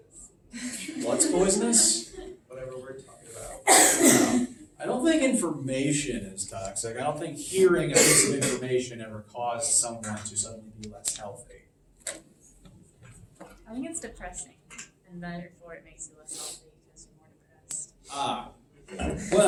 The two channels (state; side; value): identical; both; correlation 1.00